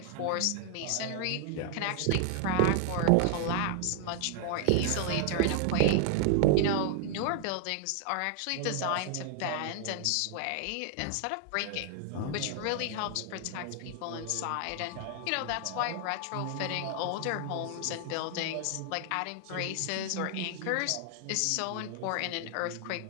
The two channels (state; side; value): different; both; correlation 0.00